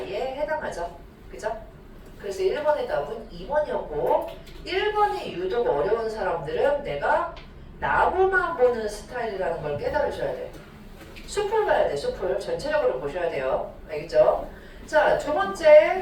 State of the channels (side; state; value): both; identical; correlation 1.00